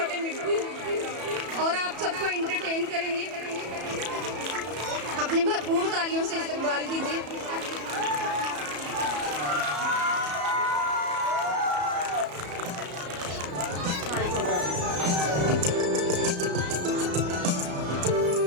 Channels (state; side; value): late; left; 34 ms